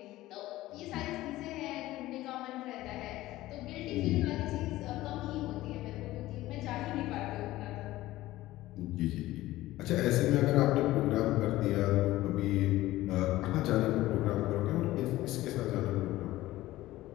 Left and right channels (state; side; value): quieter; right; 16.6 dB